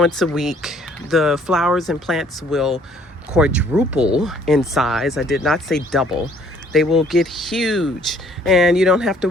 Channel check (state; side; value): normal; both; correlation 0.60